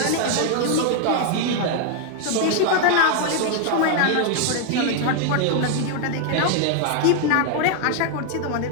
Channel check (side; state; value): both; different; correlation 0.00